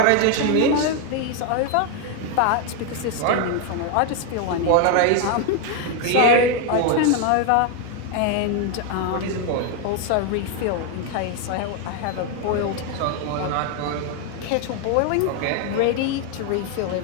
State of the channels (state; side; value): different; both; correlation 0.01